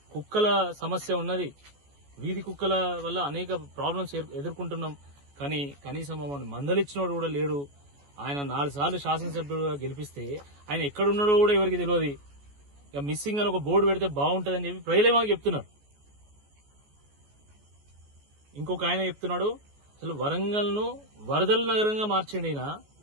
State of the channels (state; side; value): late; left; 14 ms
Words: కుక్కల సమస్య ఉన్నది, వీధి కుక్కల వల్ల అనేక ప్రాబ్లమ్స్ ఎదుర్కొంటున్నాం. కానీ కనీసం మమ్మల్ని మందలిచ్చినోడు కూడా లేడు. ఆయన 4 సార్లు శాసనసభ్యుడుగా గెలిపిస్తే ఆయన ఎక్కడున్నాడో కూడా ఎవరికి తెలియదు. ఇక మిస్సింగ్ అని ఒక బోర్డు పెడితే బాగుంటుందని చెప్పి ప్రజలే మాకు చెప్తున్నారు. ఇంకొక ఆయన చెప్తున్నాడు, అసలు వరంగల్ను వరదల నగరంగా మార్చండి.